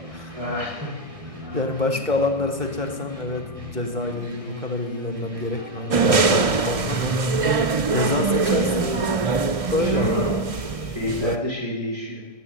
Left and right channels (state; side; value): late; left; 1.6 ms